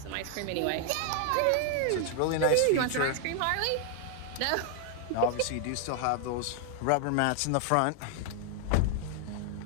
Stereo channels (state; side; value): different; both; correlation 0.00